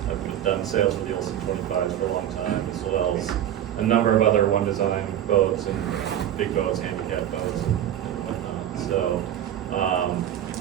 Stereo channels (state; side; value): quieter; left; 11.0 dB